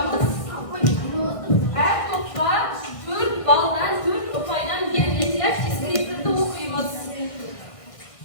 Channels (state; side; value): late; right; 1.6 ms